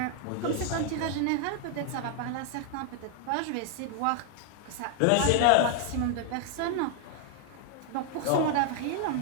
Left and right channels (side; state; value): both; different; correlation 0.00